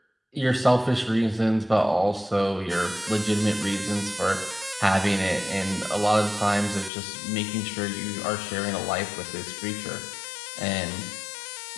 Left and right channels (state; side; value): drops out; right; at 6.9 s